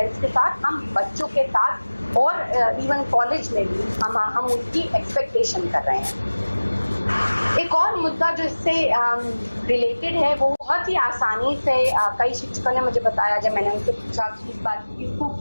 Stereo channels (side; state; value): both; inverted; correlation -1.00